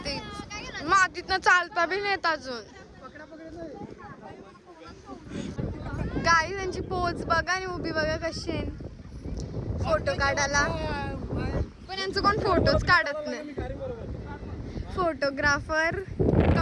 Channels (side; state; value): both; identical; correlation 1.00